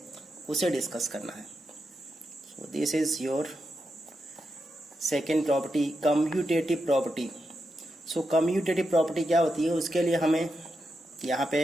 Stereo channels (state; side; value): normal; both; correlation 0.86